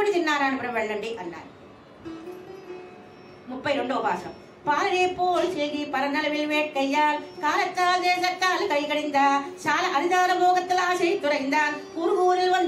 తిరునారాయణపురం వెళ్ళండి అన్నారు. 32వ భాషం. பாலே போல் செய்கி பரநலவில் வேட்கையால் காலத்தால் தேசத்தால் கைகடிந்தா చాలా అరిదాల మోగత్తల ఆశై తురైందాన్ కురుగూరిల్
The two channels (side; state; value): both; identical; correlation 1.00